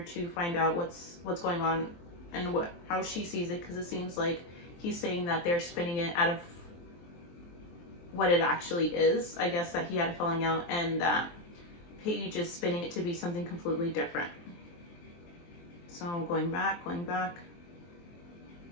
find out what's going on and how she sees it, because it seems like he's saying that they're spinning it out of what it actually is. I guess that he had a falling out, and that Paige is spinning it to be something completely different. So going back. Okay.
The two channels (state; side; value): late; right; 23 ms